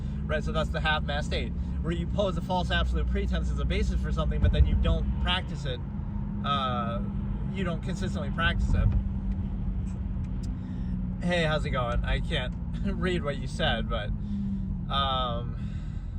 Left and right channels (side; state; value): both; identical; correlation 1.00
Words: right? So that's the half-mast state, where you pose a false absolute pretense as a basis for something, but then you don't practice it, you don't consistently practice it. Hey, how's it going? I can't read what you said, but